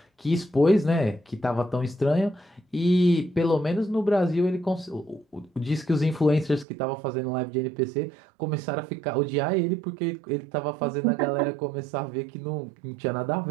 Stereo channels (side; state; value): left; drops out; at 6.7 s